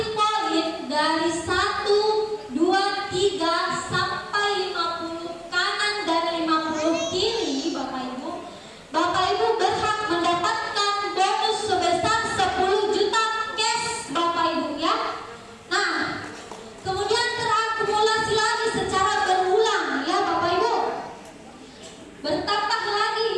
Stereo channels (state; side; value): identical; both; correlation 1.00